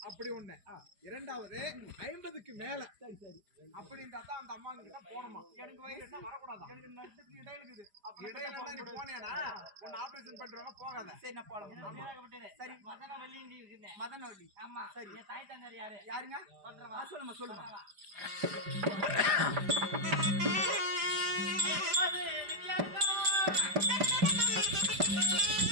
அப்படி ஒண்ணு. இரண்டாவது 50க்கு மேல. சரி சரி, அப்படி இருந்தா தான் அந்த அம்மா கிட்ட போணுமா. எனக்கு வயசு என்ன வரக்கூடாது. எனக்கு நட்டுக்கு இடையில இருக்குது. இடையில நீ போனேனா உன்னை ஆபரேஷன் பண்றாங்க, போகாத. சரி, நான் போறேன். சரி, மதனவள்ளி இருக்குது. மதனவள்ளி. ஆமா, சரி. என் தாய் தந்தார் யாருங்க? பண்றவா? சொல்லுமா.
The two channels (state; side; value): late; left; 4.9 ms